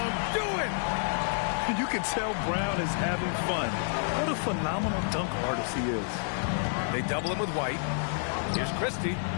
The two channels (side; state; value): right; silent; 58 dB below the other